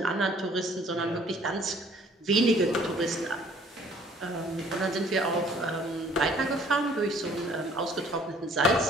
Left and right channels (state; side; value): normal; both; correlation 0.57